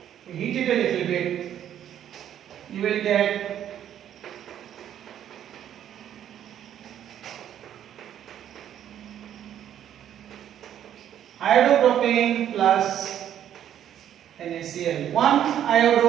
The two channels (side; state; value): left; quieter; 10.4 dB